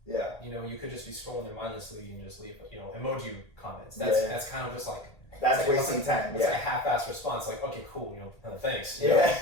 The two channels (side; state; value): right; late; 1.8 ms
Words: Yeah. You could just be scrolling there mindlessly and just leave emoji comments. That's kind of just that's wasting time. It's a half-assed response. Okay, cool. Thanks. Yeah.